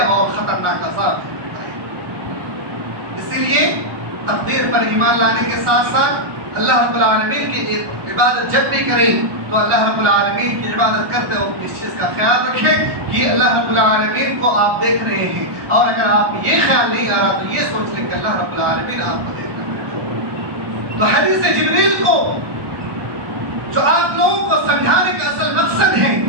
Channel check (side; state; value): left; late; 1.2 ms